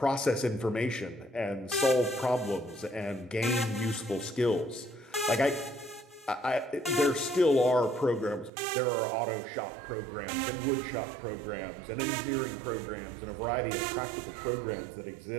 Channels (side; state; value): left; drops out; at 8.5 s